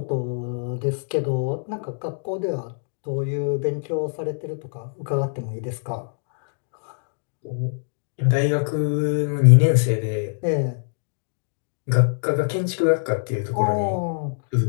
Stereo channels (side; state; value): right; silent; digital silence